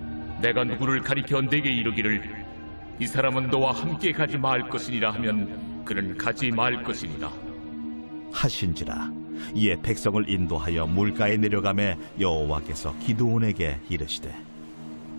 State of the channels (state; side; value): inverted; both; correlation -1.00